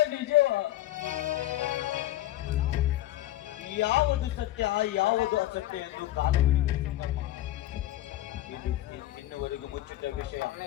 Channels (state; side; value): quieter; right; 15.0 dB